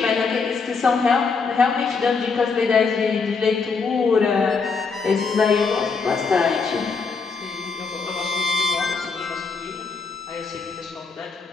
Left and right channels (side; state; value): right; quieter; 4.8 dB